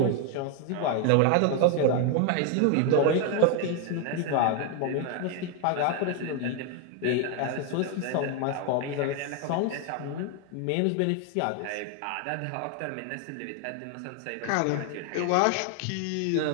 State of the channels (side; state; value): both; different; correlation 0.01